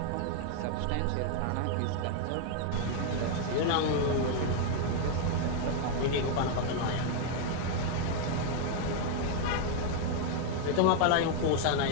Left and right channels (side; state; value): both; different; correlation 0.00